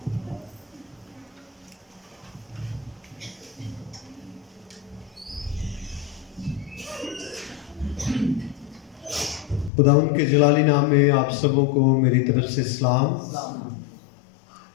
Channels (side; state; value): right; drops out; at 9.7 s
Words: खुदावंद के जलाली नाम में आप सबों को मेरी तरफ से सलाम